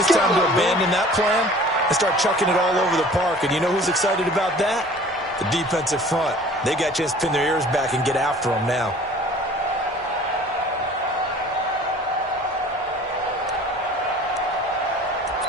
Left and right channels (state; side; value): normal; both; correlation 0.47